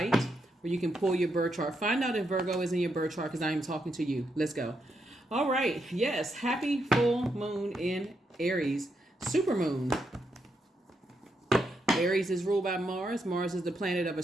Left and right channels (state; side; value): normal; both; correlation 0.81